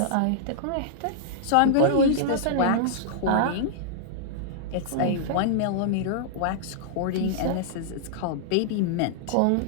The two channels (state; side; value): different; both; correlation -0.02